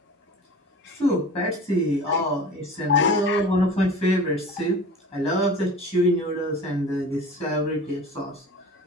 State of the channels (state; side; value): normal; both; correlation 0.38